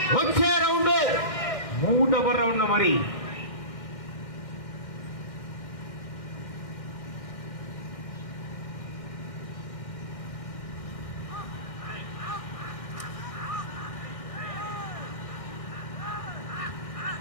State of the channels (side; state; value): right; late; 1.6 ms